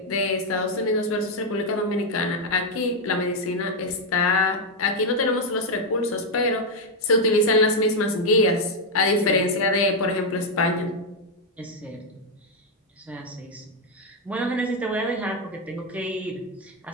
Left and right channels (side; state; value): both; normal; correlation 0.02